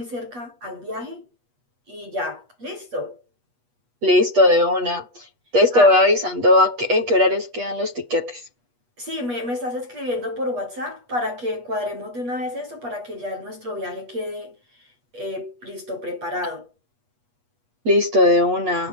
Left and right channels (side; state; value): left; late; 8.3 ms